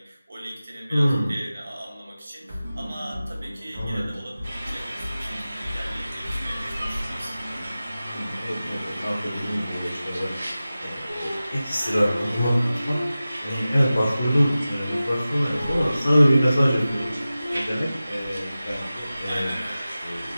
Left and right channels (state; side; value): inverted; both; correlation -0.96